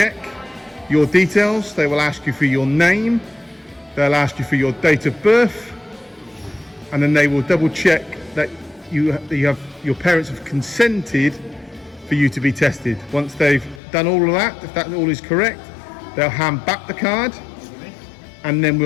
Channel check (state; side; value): drops out; right; at 13.8 s